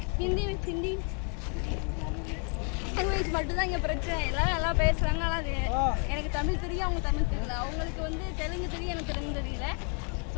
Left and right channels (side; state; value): right; quieter; 39.8 dB